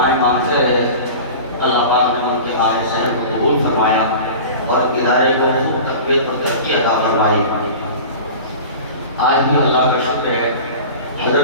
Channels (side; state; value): both; inverted; correlation -0.36